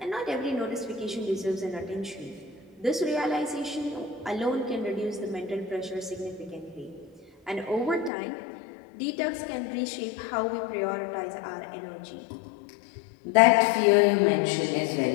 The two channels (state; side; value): drops out; right; at 8.1 s